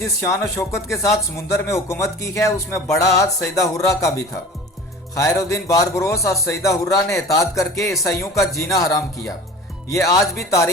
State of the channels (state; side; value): normal; both; correlation 0.39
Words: शान और शौकत के साथ समुंदर में हुकूमत की है उसमें बड़ा हाथ सईदा हुर्रा का भी था। खैरुद्दीन बारबरोस और सईदा हुर्रा ने इताद करके ईसाइयों का जीना हराम किया। ये आज भी